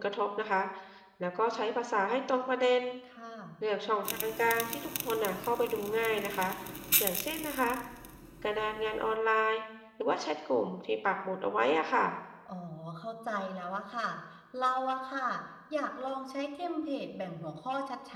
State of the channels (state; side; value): identical; both; correlation 1.00